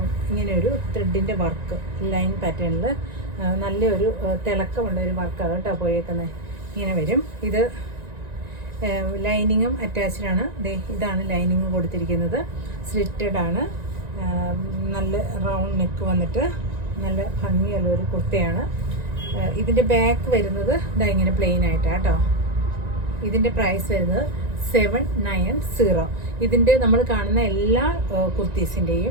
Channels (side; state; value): left; late; 1.9 ms